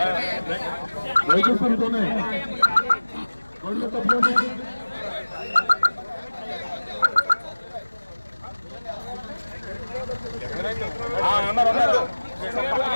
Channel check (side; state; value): both; inverted; correlation -1.00